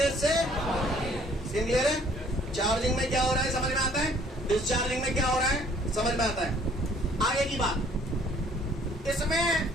से, सीन क्लियर है? चार्जिंग में क्या हो रहा है समझ में आता है, डिस्चार्जिंग में क्या हो रहा है समझ में आता है। आगे की बात, इसमें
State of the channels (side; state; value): both; normal; correlation 0.59